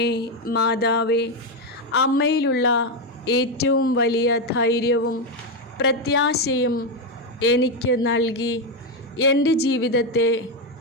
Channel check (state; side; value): normal; both; correlation 0.07